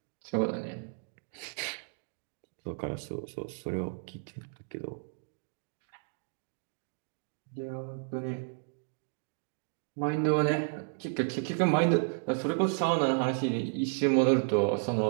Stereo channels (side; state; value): left; silent; digital silence